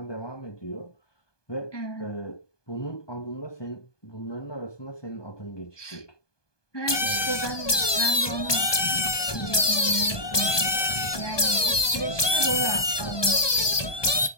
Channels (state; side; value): late; right; 1.2 ms